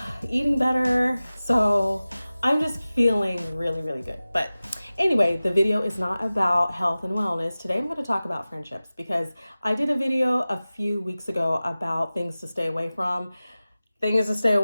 eating better. So I'm just feeling really, really good. But anyway, the video is not about health and wellness. Today I'm going to talk about friendships because I did a video a few weeks ago about things to stay away from. Things to stay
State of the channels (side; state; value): both; inverted; correlation -0.97